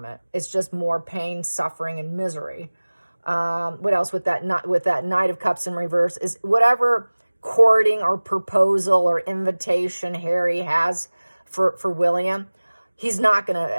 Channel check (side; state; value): both; inverted; correlation -1.00